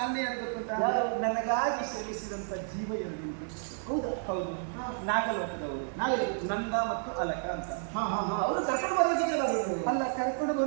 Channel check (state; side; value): silent; left; digital silence